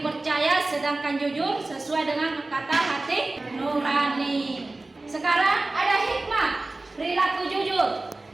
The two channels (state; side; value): quieter; left; 3.0 dB